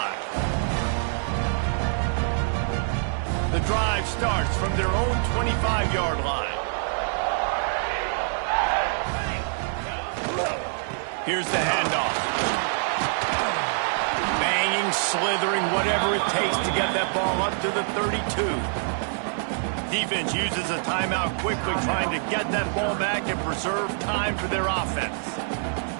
The drive starts from their own 25-yard line. Here's the handoff. Banging, slithering, whatever it takes to get that ball up to the 32. Defense uses a timeout quickly, trying to get that ball back and preserve time for their offense.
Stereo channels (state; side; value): silent; left; 58 dB below the other